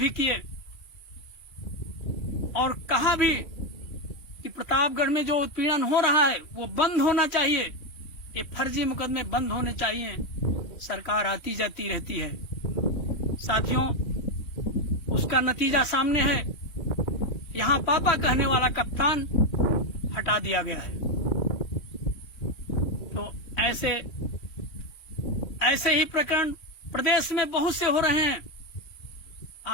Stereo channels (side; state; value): right; late; 2.9 ms